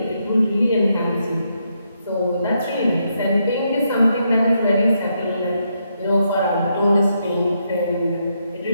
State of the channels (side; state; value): both; inverted; correlation -0.79